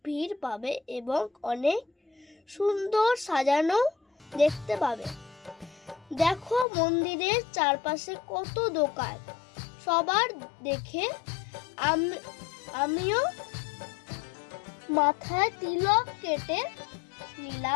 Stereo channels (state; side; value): drops out; right; at 6.7 s